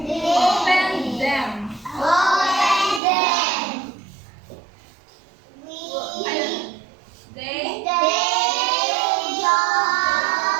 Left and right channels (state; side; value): drops out; left; at 3.0 s